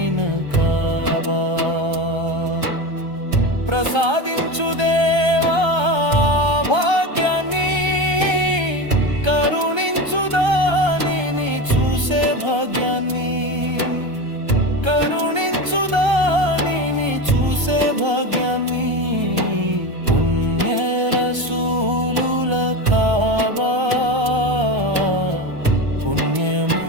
కాబా. ప్రసాదించు దేవా భాగ్యాన్ని, కరుణించు దానిని చూసే భాగ్యాన్ని, కరుణించు దానిని చూసే భాగ్యాన్ని. పుణ్య రసూలుల కాబా, పుణ్యము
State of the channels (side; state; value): left; late; 1.3 ms